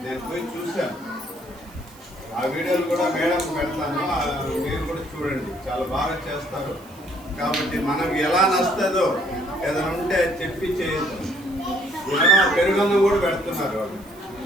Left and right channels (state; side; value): noise; right; hiss, 25 dB below the sound